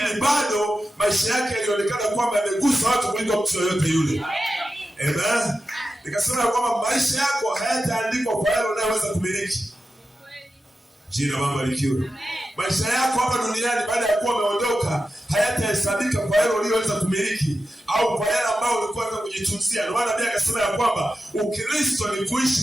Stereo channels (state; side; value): normal; both; correlation 0.92